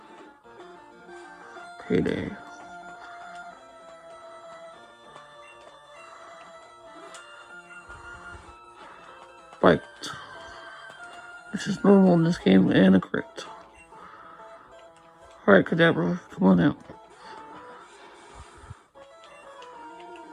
Payday. Bite. Which is normal in this game, and a crit. Alright, Kadabra, come on out.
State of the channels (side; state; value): both; identical; correlation 1.00